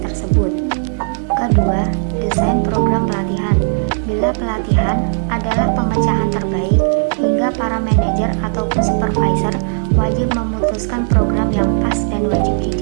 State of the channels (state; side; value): silent; left; digital silence